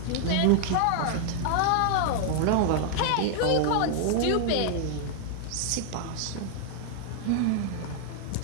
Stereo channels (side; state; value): both; different; correlation 0.00